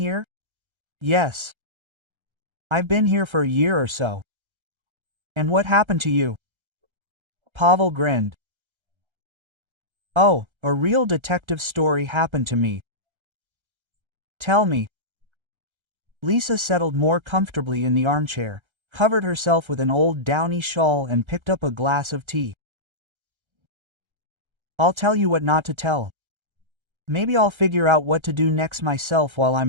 "Yes. I've been here for a year or so." "And what happened to you?" Pavel grinned. "Oh, a real detective story happened to me." "Tell me." Lisa settled more comfortably in the armchair, covered herself with an old downy shawl and picked up a glass of tea. "I'll tell you what not to tell. Maybe I'll figure out what to do next myself while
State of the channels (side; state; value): left; late; 1.3 ms